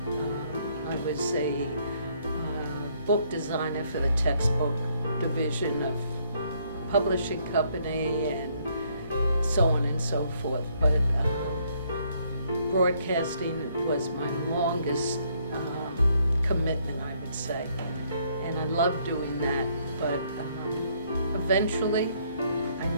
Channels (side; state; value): both; inverted; correlation -0.68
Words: I was a book designer for the textbook division of publishing company and so on and so forth. But broadcasting was my longest commitment, I would say. And I loved doing that, but eventually I